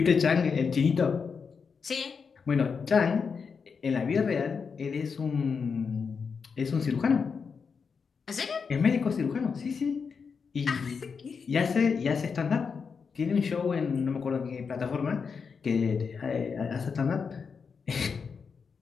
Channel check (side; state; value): right; quieter; 5.7 dB